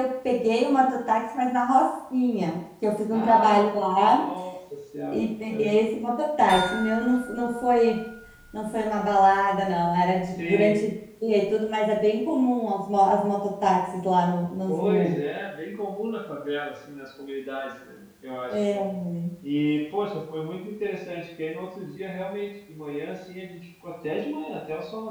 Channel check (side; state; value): both; identical; correlation 1.00